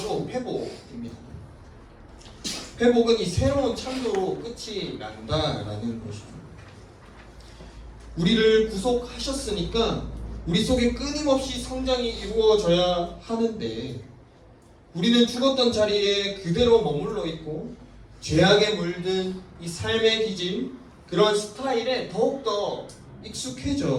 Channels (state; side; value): identical; both; correlation 1.00